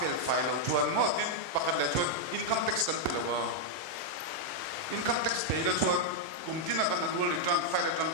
file of Juan Martin, Pakat Lejon, income tax control. Income tax paid a Juan, Kumtina can annual return, fire return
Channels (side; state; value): left; late; 31 ms